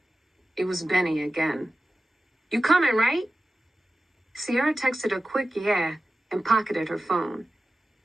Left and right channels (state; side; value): normal; both; correlation 0.95